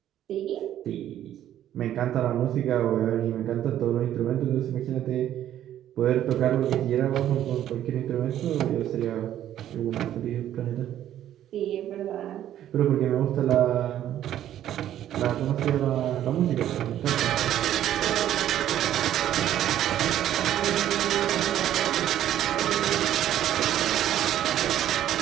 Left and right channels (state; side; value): quieter; left; 11.6 dB